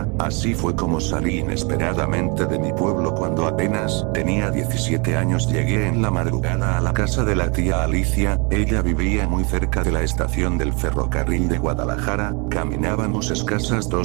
Así fue como salí inesperadamente de mi pueblo. Cuando apenas tenía 17 años llegué en la madrugada a la casa de la tía Alicia, ella vivía muy cerca de la estación del ferrocarril de Guadalajara, caminábamos escasas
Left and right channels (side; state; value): left; quieter; 31.6 dB